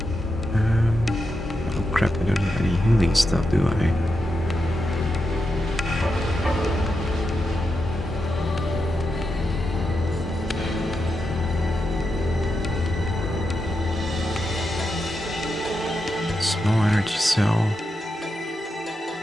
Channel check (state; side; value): normal; both; correlation 0.86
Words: Oh crap, I don't have any healing stuff, do I? Small energy cell.